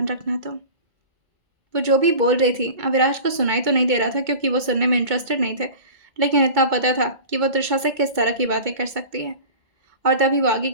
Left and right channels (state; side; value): late; left; 2.2 ms